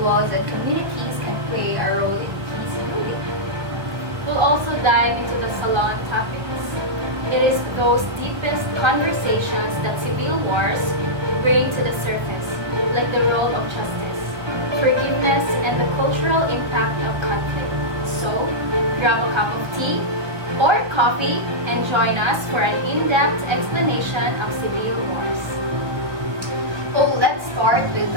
and communities can play a role in peace building. We'll also dive into the salon topics. It is those deepest conversations that civil wars bring to the surface, like the role of justice, forgiveness, and the cultural impact of conflict. So, grab a cup of tea or coffee and join us for an in-depth explanation of civil wars. Oh, let's start with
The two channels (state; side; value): late; left; 1.4 ms